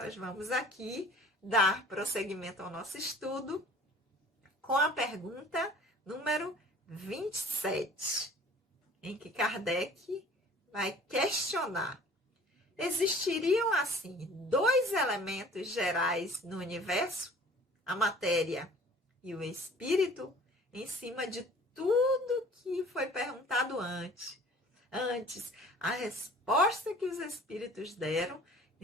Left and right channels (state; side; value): normal; both; correlation 0.48